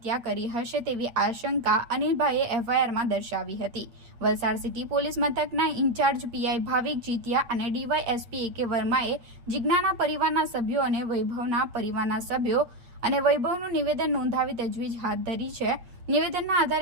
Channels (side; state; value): left; late; 8.5 ms